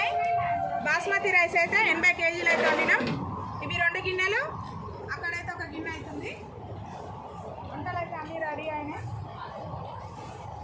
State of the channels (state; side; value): identical; both; correlation 1.00